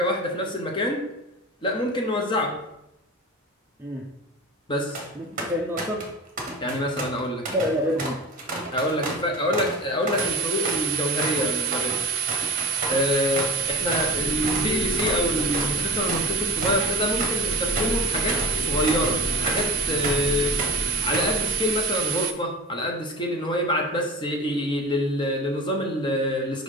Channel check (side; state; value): both; normal; correlation 0.33